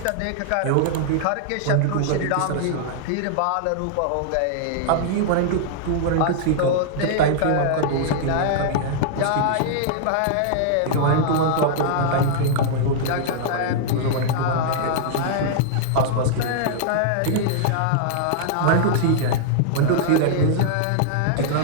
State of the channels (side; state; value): both; different; correlation -0.01